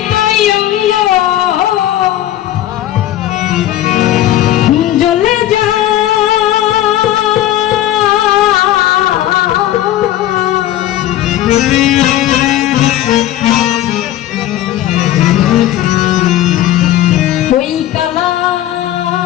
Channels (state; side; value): quieter; right; 13.2 dB